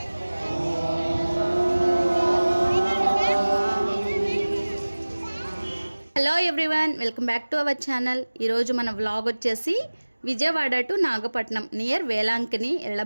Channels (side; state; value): both; inverted; correlation -1.00